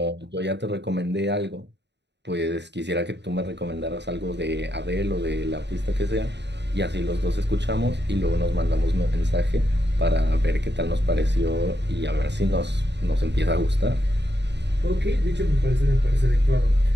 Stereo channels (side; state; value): left; late; 0.50 ms